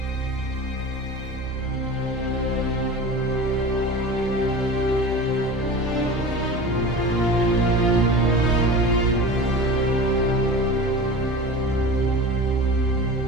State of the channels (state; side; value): normal; both; correlation 0.34